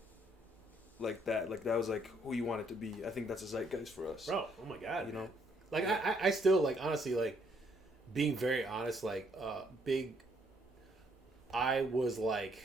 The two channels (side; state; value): both; normal; correlation 0.69